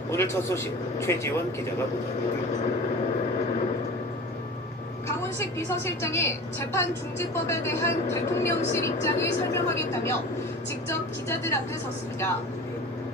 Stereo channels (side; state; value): both; normal; correlation 0.36